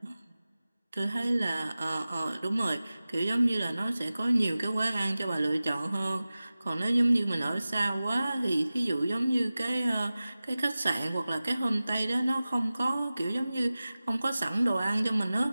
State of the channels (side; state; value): both; inverted; correlation -0.96